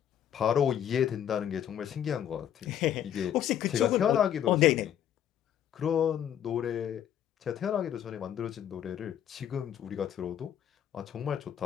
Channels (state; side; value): quieter; right; 10.1 dB